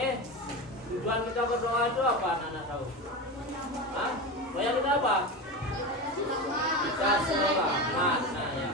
Tujuan kita berdoa itu apa anak-anak tahu? Hah? Doa kita apa? Kita selamat. Nah ya.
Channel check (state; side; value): normal; both; correlation 0.23